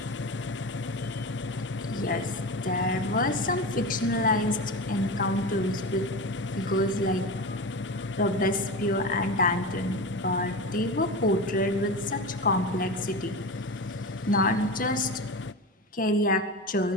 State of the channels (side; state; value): both; normal; correlation 0.25